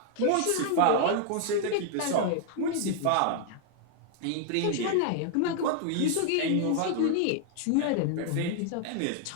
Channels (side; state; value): both; different; correlation 0.00